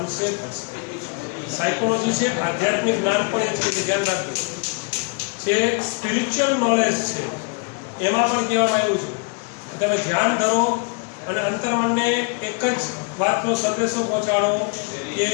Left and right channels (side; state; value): right; quieter; 34.8 dB